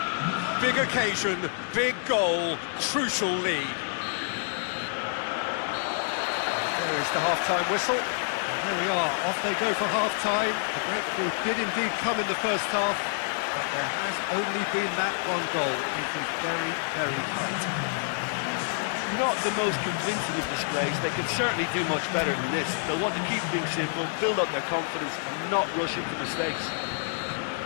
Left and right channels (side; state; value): right; silent; digital silence